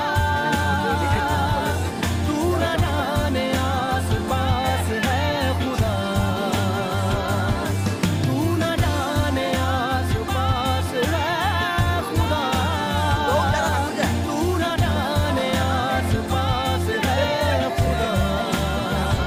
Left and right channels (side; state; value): both; identical; correlation 1.00